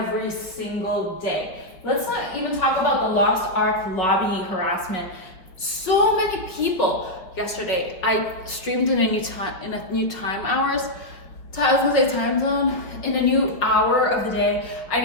single day. Let's not even talk about the Lost Ark lobby harassment. So many people. Yesterday I streamed in a new time hours. I was gonna say time zone, in a new hour of the day. I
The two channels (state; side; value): late; right; 5.3 ms